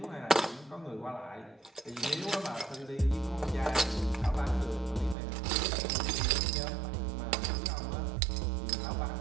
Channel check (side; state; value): left; drops out; at 5.2 s